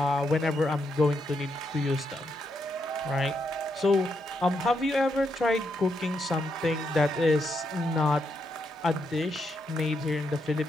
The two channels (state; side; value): normal; both; correlation 0.80